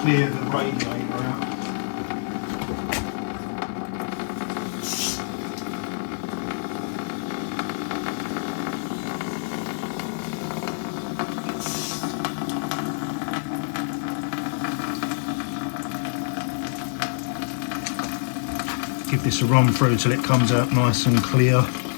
the radiator out. Give this a run through till it comes out nice and clear.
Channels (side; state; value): right; silent; 59 dB below the other